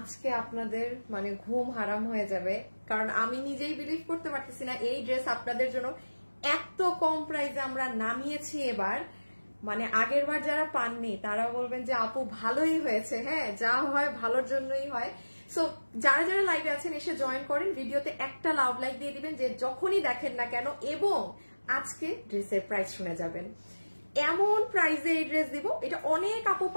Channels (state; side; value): inverted; both; correlation -1.00